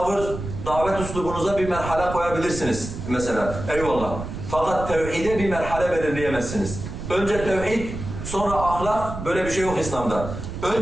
davet uslubunuza bir merhale koyabilirsiniz mesela. Eyvallah. Fakat tevhide bir merhale belirleyemezsiniz. Önce tevhid, sonra ahlak, böyle bir şey yok İslam'da.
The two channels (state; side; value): noise; right; rumble, 8 dB below the sound